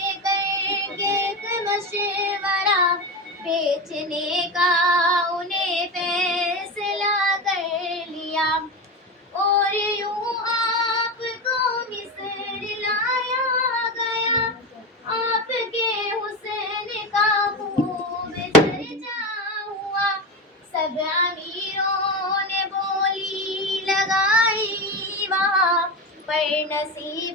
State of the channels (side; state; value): both; normal; correlation 0.20